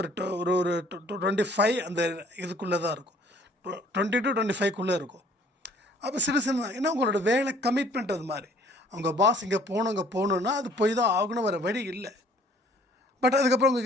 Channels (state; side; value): normal; both; correlation 0.57